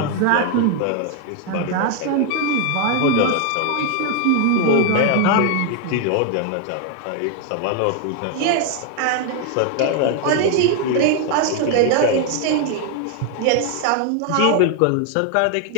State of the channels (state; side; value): different; both; correlation 0.00